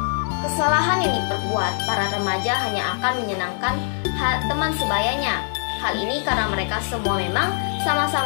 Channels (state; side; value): silent; right; digital silence